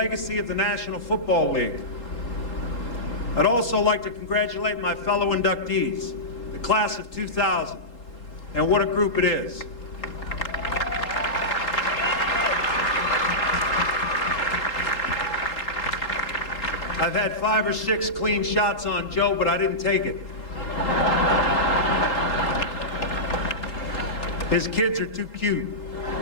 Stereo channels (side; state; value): right; late; 3.8 ms